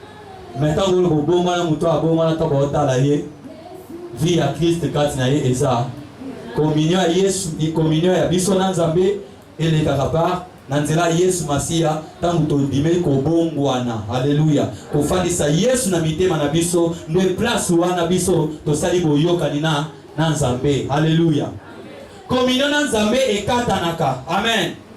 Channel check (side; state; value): both; identical; correlation 1.00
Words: Maintenant vous le bongwana muto abongwana to botala ye. Vie à Christ katina ye eza. Communion à Yesu, communion à biso na Nzambe et les kakapar nanzela Yesu Masia tangu tondime ko bongwana. Alléluia. Ko fandisa Yesu na mitema na biso ne place wana biso to sali boyoka nina na Nzambe. Alléluia. Communion na Nzambe ekatanaka. Amen.